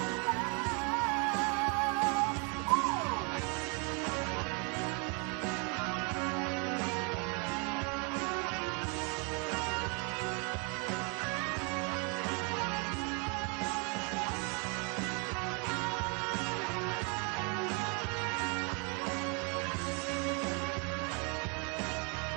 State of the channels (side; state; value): left; quieter; 34.2 dB